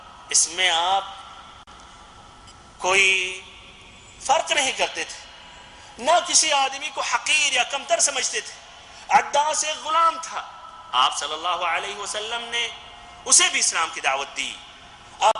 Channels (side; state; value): both; identical; correlation 1.00